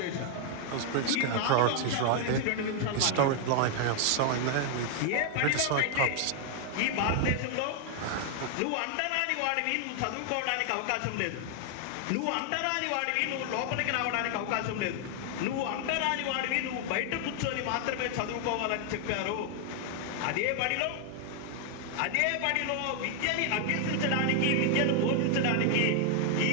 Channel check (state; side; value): different; both; correlation 0.00